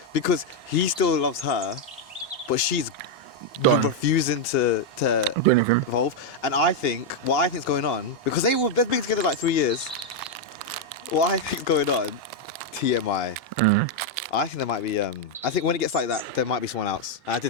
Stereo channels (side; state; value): both; normal; correlation 0.00